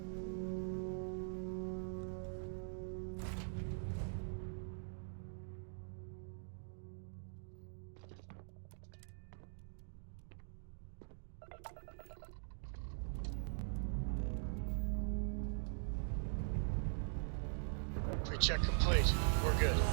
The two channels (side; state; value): left; silent; digital silence